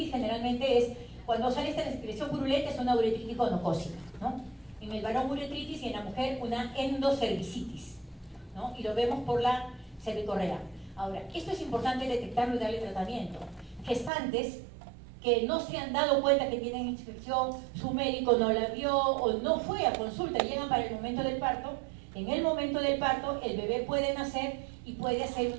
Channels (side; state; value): left; drops out; at 14.1 s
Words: generalmente es, cuando sale esta secreción purulenta, es una uretritis gonocócica, ¿no? En el varón uretritis y en la mujer una endocervicitis, ¿no? Y lo vemos por la cervicorrea. Ahora, esto es importante detectarlo y darle tratamiento. Gestantes que no se han dado cuenta que tienen infección, su médico no la vio o no fue a consulta, llegan para el momento del parto. En el momento del parto el bebé puede nacer y puede hacer